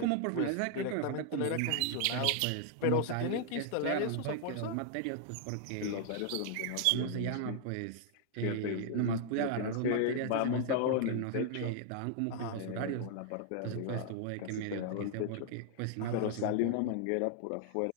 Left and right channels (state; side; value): different; both; correlation 0.00